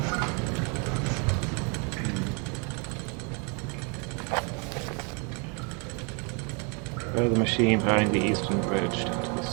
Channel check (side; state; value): left; quieter; 34.9 dB